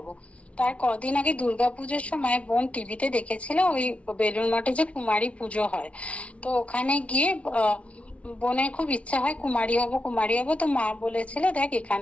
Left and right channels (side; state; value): right; late; 0.063 ms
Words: তার কদিন আগে দুর্গাপুজোর সময় বোন টিভিতে দেখেছিল ওই বেলুড় মঠে যে কুমারী পুজো হয়। তো ওখানে গিয়ে বোনের খুব ইচ্ছা হয় কুমারী হব। তো মা বলেছিল দেখ,